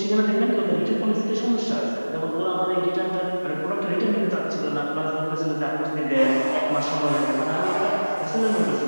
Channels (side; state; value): both; inverted; correlation -1.00